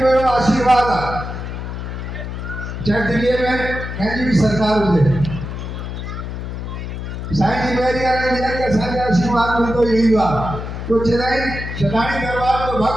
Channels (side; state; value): left; noise; hum, 7 dB below the sound